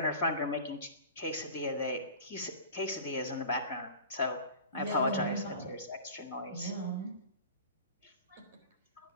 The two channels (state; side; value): inverted; both; correlation -0.38